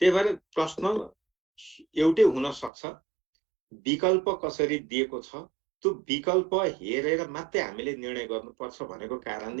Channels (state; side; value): drops out; left; at 2.7 s